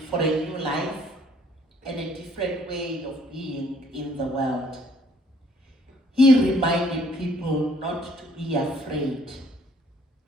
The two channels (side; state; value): both; normal; correlation 0.61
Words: for a new life and a different way of being in the world. He reminded people not to be afraid,